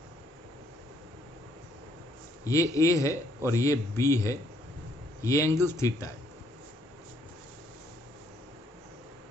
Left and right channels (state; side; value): normal; both; correlation 0.67